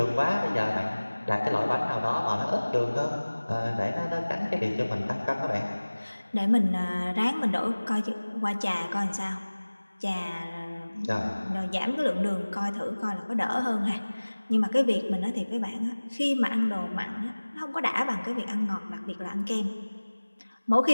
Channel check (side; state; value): both; inverted; correlation -1.00